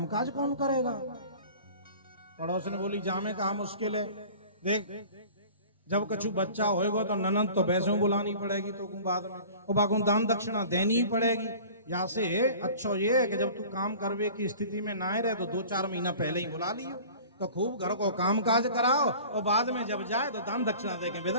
कौन करेगा। पड़ोस ने बोली जामे कहा मुश्किल है, देख जब कछु बच्चा होएगा तो ननद तो वैसे बुलानी पड़ेगी, तो बाद में और बागों दान दक्षिणा देनी ही पड़ेगी। यहाँ से अच्छा ये है कि जब तू काम करवे की स्थिति में ना रहे तो 2-4 महीना पहले ही बुला लियो, तो खूब घर को काम काज कराओ और बाद में जब जाए तो दान दक्षिणा दे के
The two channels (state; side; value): inverted; both; correlation -0.43